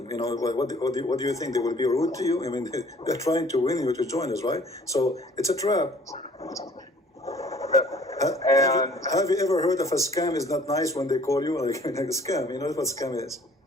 What do you think, they will be rude to you? I mean, they're trying to win you to join us, right? So it's a trap. And have you ever heard of a scam is not nice when they call you like a scam? You know what scam is?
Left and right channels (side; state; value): both; normal; correlation 0.54